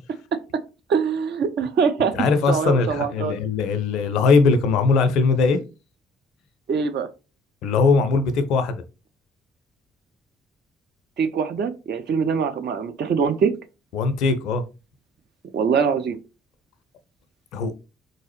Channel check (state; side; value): normal; both; correlation 0.52